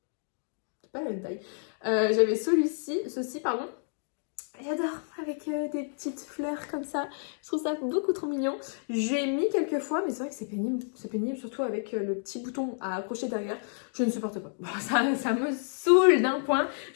C'est pas la même taille. J'avais ceci pardon. J'adore, avec des petites fleurs comme ça. Je trouve ça beaucoup trop mignon. J'ai mis quelques fois, mais c'est vrai que c'est pénible. C'est pénible, surtout avec le petit bouton à accrocher derrière. Je ne supporte pas. Bon, ça me saoule d'un point.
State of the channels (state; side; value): silent; right; digital silence